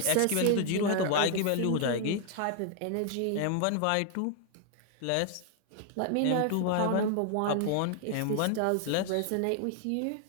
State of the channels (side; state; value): both; different; correlation 0.00